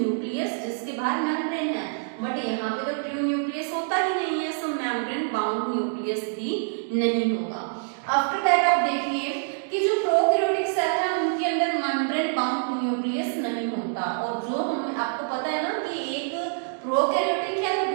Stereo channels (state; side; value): silent; left; digital silence